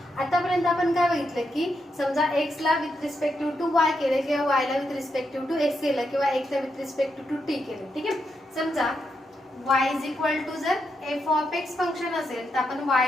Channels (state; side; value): normal; both; correlation 0.83